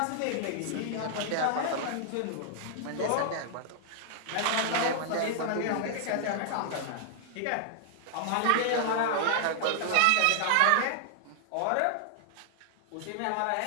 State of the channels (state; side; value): different; both; correlation -0.01